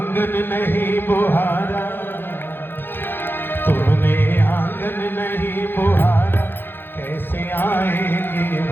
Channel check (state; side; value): late; right; 0.10 ms